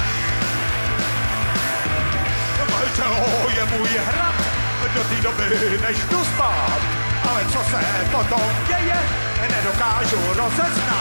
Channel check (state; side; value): inverted; both; correlation -1.00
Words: Tělo je můj hrad, do té doby než jdu spát. Ale co se potom děje, nedokážu